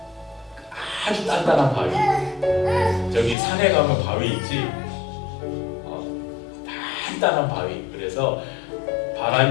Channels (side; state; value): right; drops out; at 3.4 s